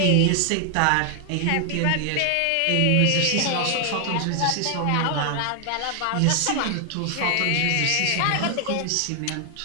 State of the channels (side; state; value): both; different; correlation 0.00